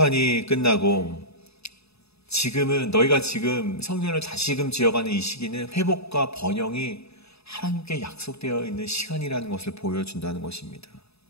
끝나고 지금은, 너희가 지금 성전을 다시금 지어가는 이 시기는 회복과 번영이 하나님께 약속되어 있는 시간이라는 것을 보여준다는 것입니다.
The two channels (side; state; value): right; late; 0.79 ms